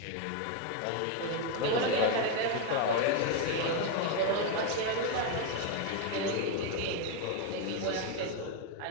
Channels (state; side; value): different; both; correlation 0.02